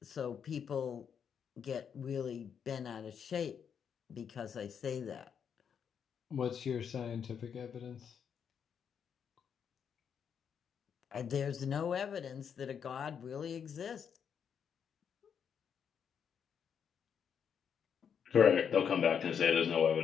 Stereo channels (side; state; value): right; quieter; 7.5 dB